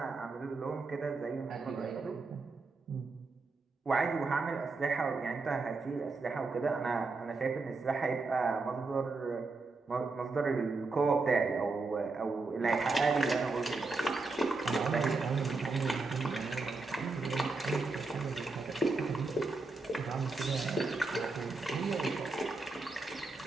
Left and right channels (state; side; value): quieter; left; 3.7 dB